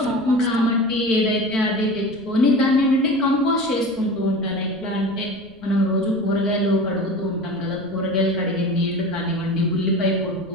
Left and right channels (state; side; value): noise; right; rumble, 25 dB below the sound